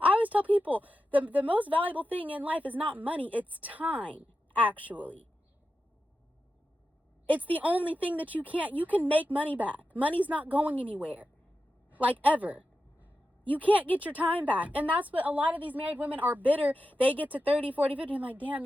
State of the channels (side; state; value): both; normal; correlation 0.91